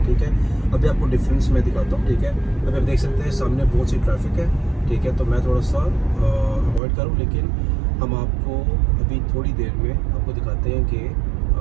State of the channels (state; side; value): drops out; left; at 6.8 s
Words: ठीक है, अभी आपको डिफरेंस मैं दिखाता हूँ। ठीक है, अभी आप देख सकते हैं सामने बहुत सी ट्रैफिक है। ठीक है, तो मैं थोड़ा सा अवॉइड करूँ, लेकिन हम आपको अभी थोड़ी देर में आपको दिखाते हैं